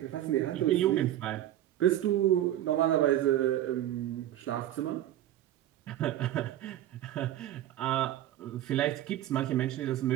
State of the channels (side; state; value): left; quieter; 12.8 dB